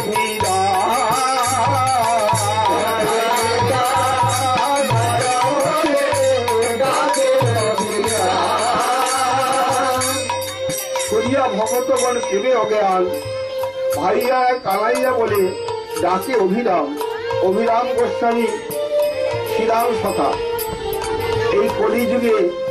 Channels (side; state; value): both; identical; correlation 1.00